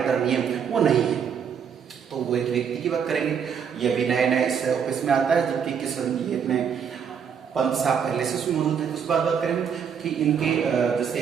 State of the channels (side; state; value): left; quieter; 7.4 dB